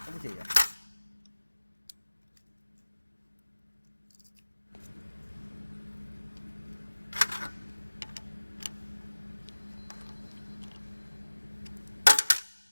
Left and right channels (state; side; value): inverted; both; correlation -1.00